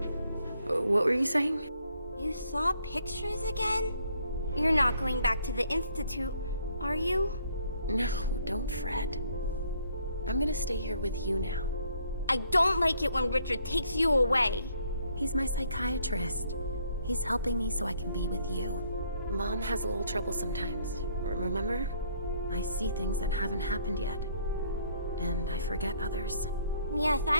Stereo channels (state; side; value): inverted; both; correlation -0.66